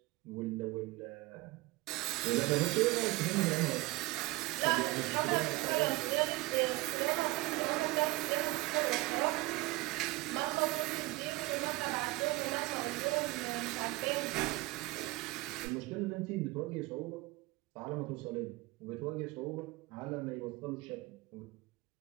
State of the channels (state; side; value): quieter; left; 20.7 dB